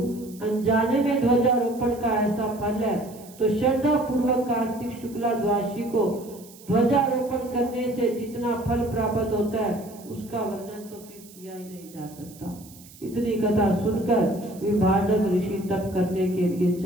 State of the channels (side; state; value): right; noise; hiss, 21 dB below the sound